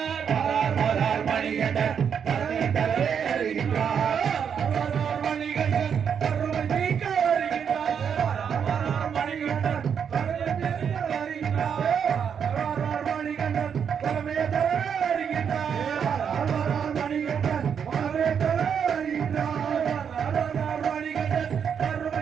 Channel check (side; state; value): left; quieter; 7.4 dB